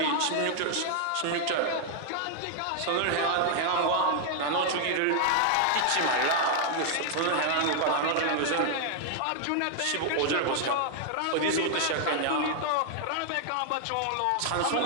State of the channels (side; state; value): both; different; correlation 0.00